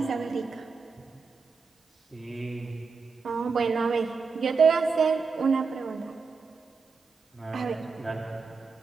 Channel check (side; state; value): left; quieter; 4.9 dB